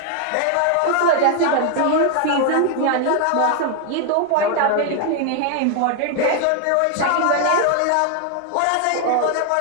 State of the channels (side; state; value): both; different; correlation 0.00